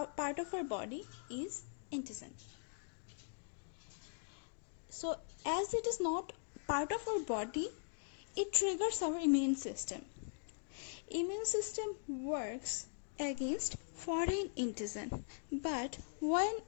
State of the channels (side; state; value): right; silent; digital silence